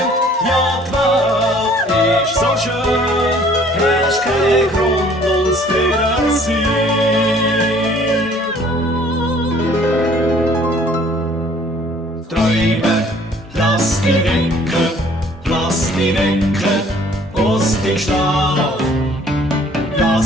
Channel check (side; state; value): both; normal; correlation 0.56